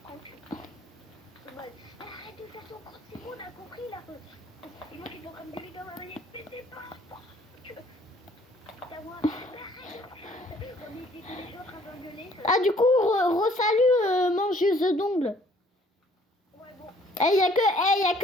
prank. En mode, arrête de faire son compte, c'est bon, on a compris là. Et moi qui suis en train de gueuler dans ma manette, mais c'est pas ta voix, arrête. On était tous les deux en train d'engueuler. Ah, du coup, re-salut, mangeuse d'ongles. Ouais, bon. Il y a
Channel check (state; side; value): normal; both; correlation 0.60